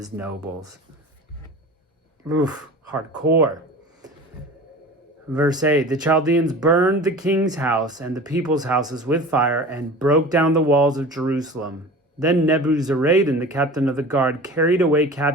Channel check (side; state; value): both; normal; correlation 0.37